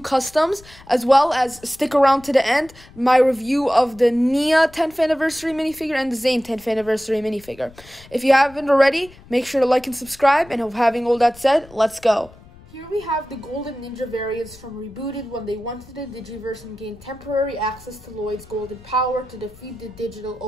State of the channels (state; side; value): noise; left; rumble, 23 dB below the sound